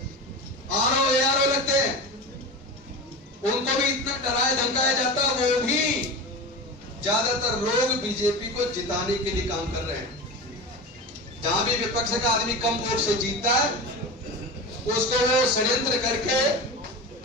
आरओ एआरओ लगते हैं, उनको भी इतना डराया धमकाया जाता, वो भी ज्यादातर लोग बीजेपी को जिताने के लिए काम कर रहे हैं। जहां भी विपक्ष का आदमी कम वोट से जीतता है, उसको वो षड्यंत्र करके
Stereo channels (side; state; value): both; normal; correlation 0.27